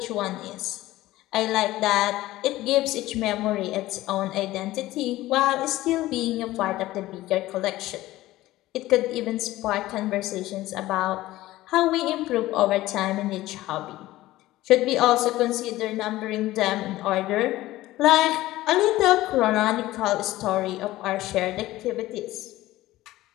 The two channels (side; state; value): right; quieter; 16.6 dB